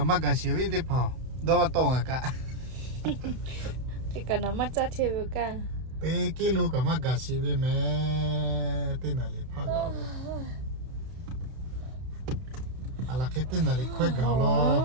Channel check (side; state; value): left; late; 31 ms